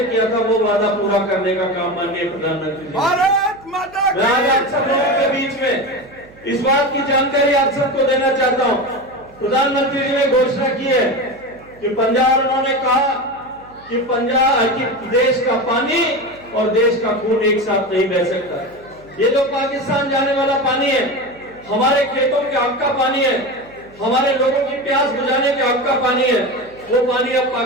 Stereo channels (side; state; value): right; noise; hum, 25 dB below the sound